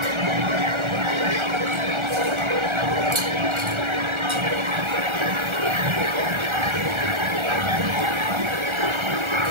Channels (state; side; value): late; left; 1.3 ms